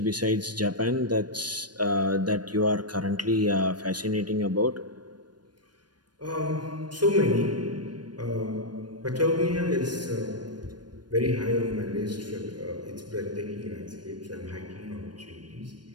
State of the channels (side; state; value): left; late; 0.70 ms